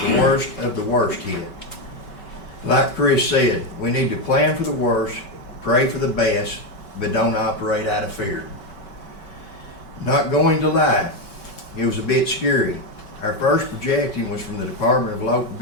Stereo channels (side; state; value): right; late; 5.3 ms